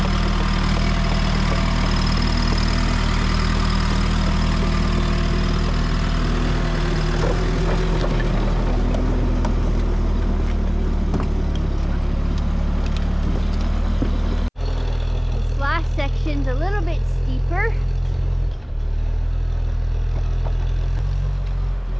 Section's a little bit steeper.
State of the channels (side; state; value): both; identical; correlation 1.00